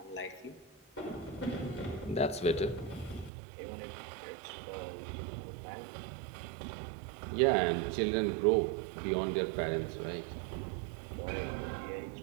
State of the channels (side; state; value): left; drops out; at 3.3 s